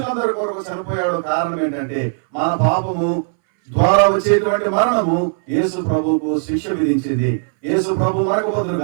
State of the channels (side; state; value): left; silent; 63 dB below the other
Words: కొరకు చనిపోయాడు. కారణం ఏంటంటే మన పాపము ద్వారా వచ్చేటువంటి మరణము యేసు ప్రభువుకు శిక్ష విధించింది. యేసు ప్రభు మనకు